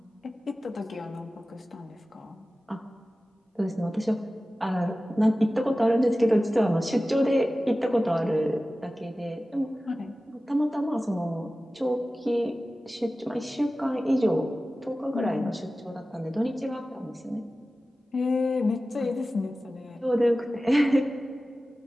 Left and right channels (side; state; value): both; normal; correlation 0.96